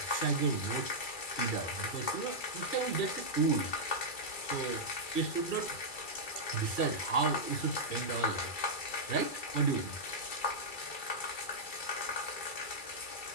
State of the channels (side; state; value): right; late; 2.3 ms